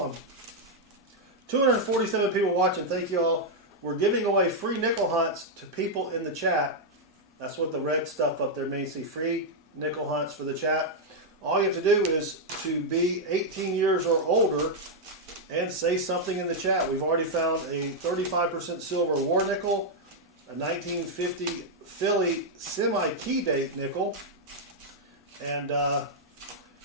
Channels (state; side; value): normal; both; correlation -0.03